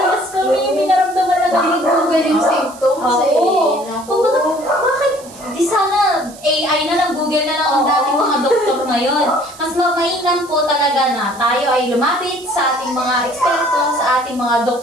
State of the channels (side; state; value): right; noise; hiss, 20 dB below the sound